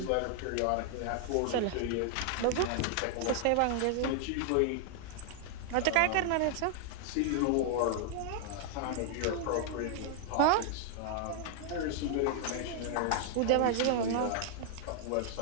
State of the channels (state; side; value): different; both; correlation 0.00